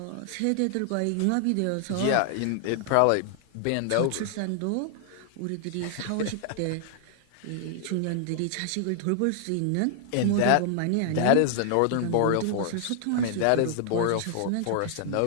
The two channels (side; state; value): both; different; correlation 0.00